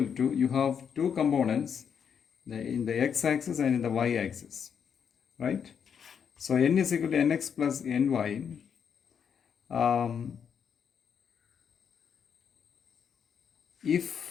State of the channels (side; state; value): right; quieter; 7.4 dB